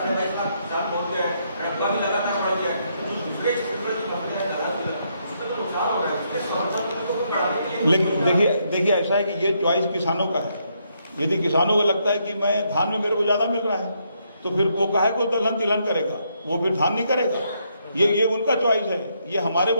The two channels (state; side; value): inverted; both; correlation -0.75